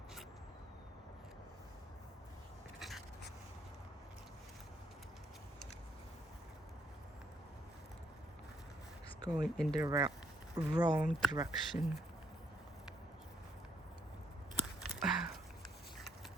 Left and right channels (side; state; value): both; normal; correlation 0.71